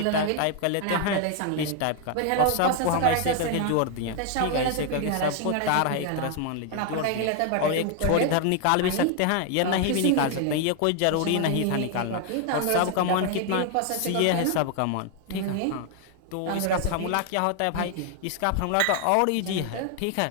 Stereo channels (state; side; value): different; both; correlation 0.00